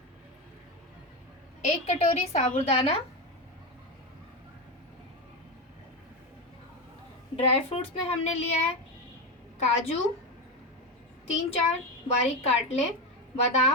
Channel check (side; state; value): both; normal; correlation 0.15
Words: 1 कटोरी साबूदाना। ड्राई फ्रूट्स में हमने लिया है काजू 3-4 बारीक काट लें,